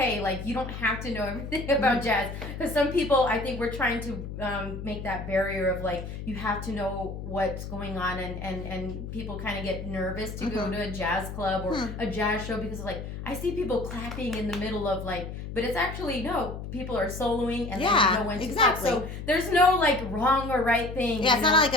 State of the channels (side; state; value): left; noise; hum, 8 dB below the sound